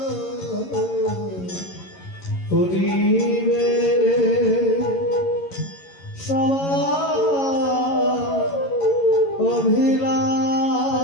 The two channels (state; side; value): late; right; 11 ms